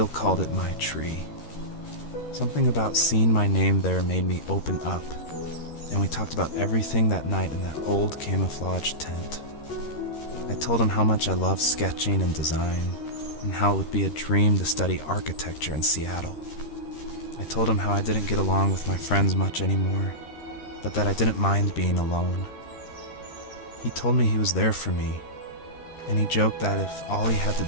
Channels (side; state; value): right; late; 13 ms